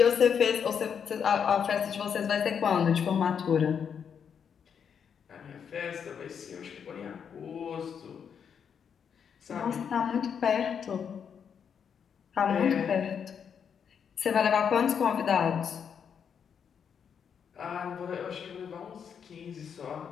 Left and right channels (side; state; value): right; quieter; 7.3 dB